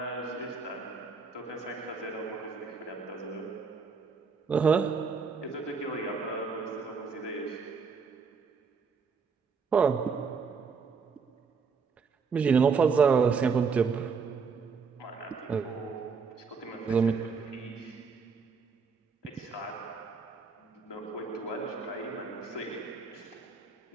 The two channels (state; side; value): quieter; left; 5.3 dB